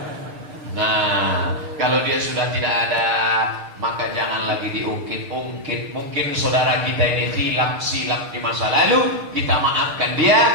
Nah, kalau dia sudah tidak ada, maka jangan lagi diungkit-ungkit. Mungkin saudara kita ini silap di masa lalu, kita maafkan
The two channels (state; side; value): late; left; 6.6 ms